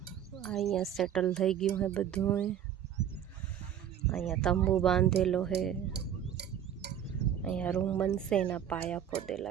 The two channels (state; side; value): quieter; left; 9.7 dB